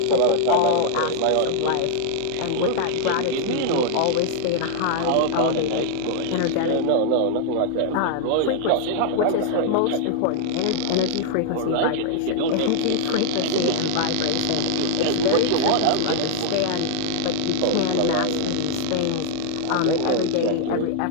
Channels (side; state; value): both; different; correlation 0.00